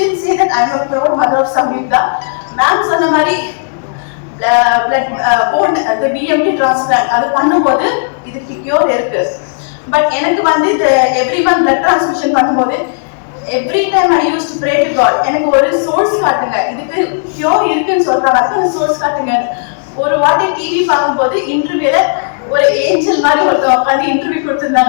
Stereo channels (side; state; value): right; silent; digital silence